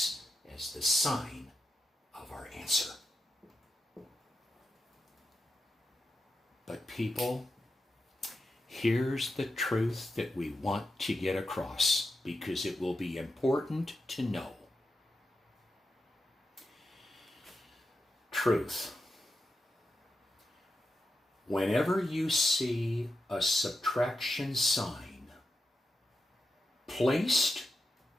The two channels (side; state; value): both; normal; correlation 0.88